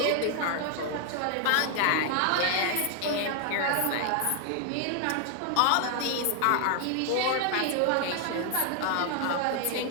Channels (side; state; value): both; different; correlation 0.00